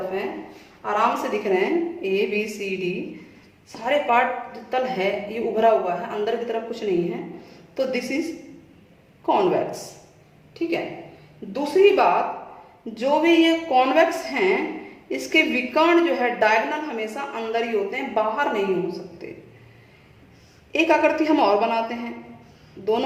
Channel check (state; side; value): identical; both; correlation 1.00